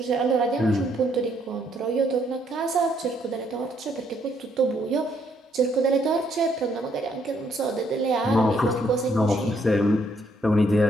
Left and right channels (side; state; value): both; normal; correlation 0.70